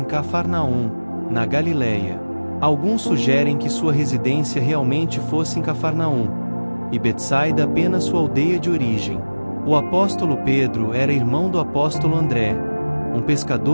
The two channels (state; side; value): inverted; both; correlation -1.00